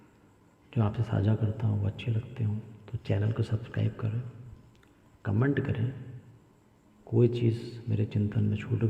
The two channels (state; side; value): identical; both; correlation 1.00